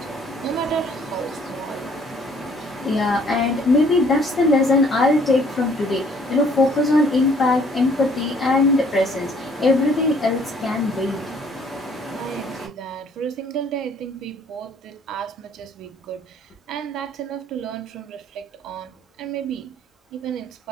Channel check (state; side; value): normal; both; correlation 0.60